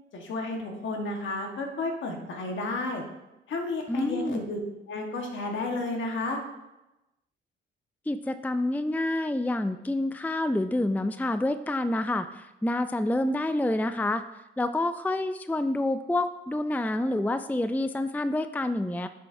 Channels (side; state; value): both; normal; correlation 0.79